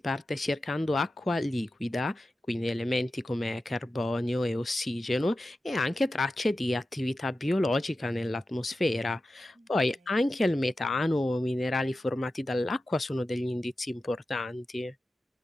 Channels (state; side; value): normal; both; correlation 0.93